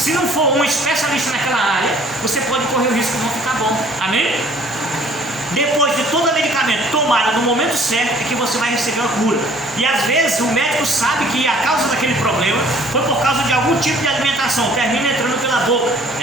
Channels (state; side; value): normal; both; correlation 0.55